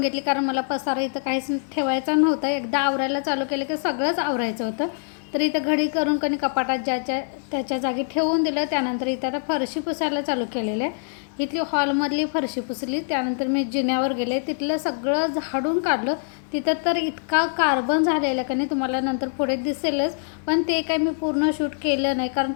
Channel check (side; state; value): right; silent; 61 dB below the other